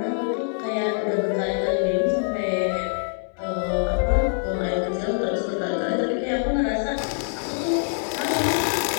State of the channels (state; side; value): silent; right; 62 dB below the other